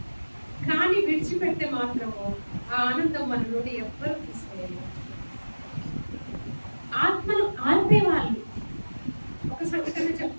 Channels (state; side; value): inverted; both; correlation -1.00